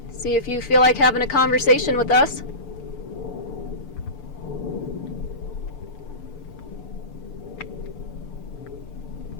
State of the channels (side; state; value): right; late; 6.8 ms